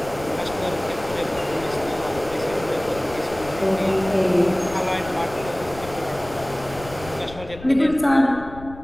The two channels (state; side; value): noise; left; rumble, 16 dB below the sound